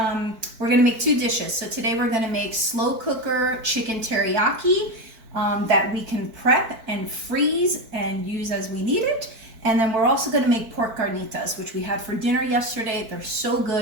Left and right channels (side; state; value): left; late; 4.5 ms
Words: we're going to make two dishes. So today we're going to make slow cooker chicken teriyaki that we can prep and freeze and use as we need it. And then we're also going to make pork carnitas, which we had for dinner yesterday. They're so